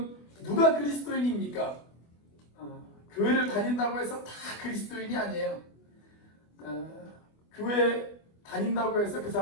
누가 그리스도인입니까? 교회를 다닌다고 해서 다 그리스도인이 아니에요. 교회 다닌다고 해서 그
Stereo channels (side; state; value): right; late; 24 ms